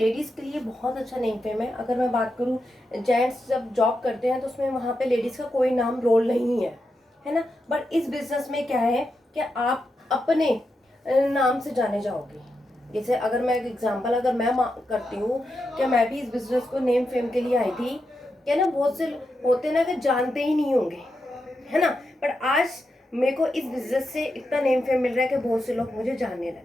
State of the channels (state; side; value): normal; both; correlation 0.86